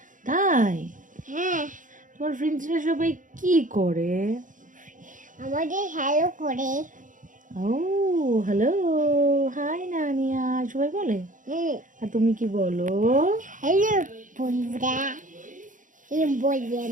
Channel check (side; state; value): left; late; 0.38 ms